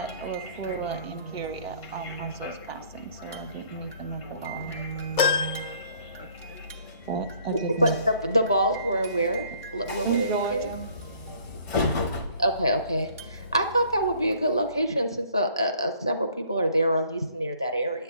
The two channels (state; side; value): inverted; both; correlation -0.59